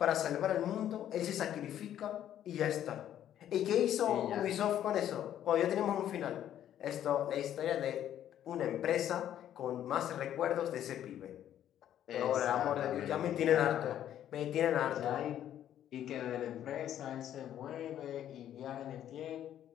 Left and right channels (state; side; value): quieter; right; 11.0 dB